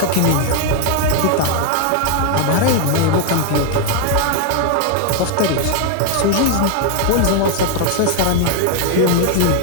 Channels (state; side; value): different; both; correlation 0.00